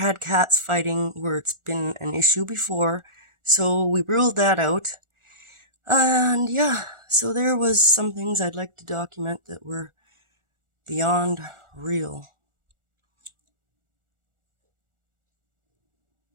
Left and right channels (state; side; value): late; left; 1.4 ms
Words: cats fighting where it's been an issue before, so we ruled that out. And yeah, so there was some things I'd like to document that were beyond real.